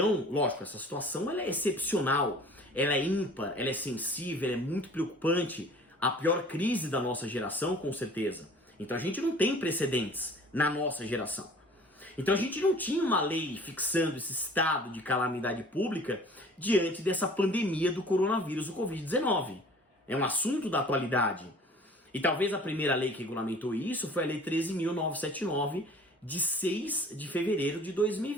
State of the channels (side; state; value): both; normal; correlation 0.48